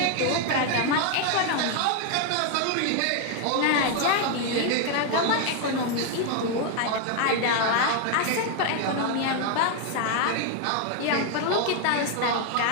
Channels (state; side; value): different; both; correlation 0.01